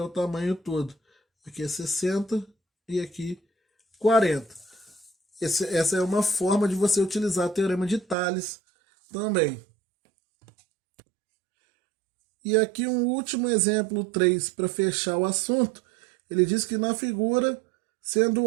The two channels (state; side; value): drops out; left; at 8.2 s